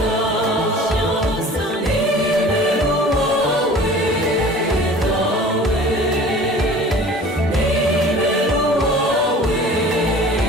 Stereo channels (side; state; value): both; normal; correlation 0.44